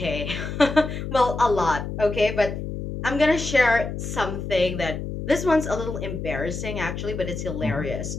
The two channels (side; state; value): left; noise; hum, 6 dB below the sound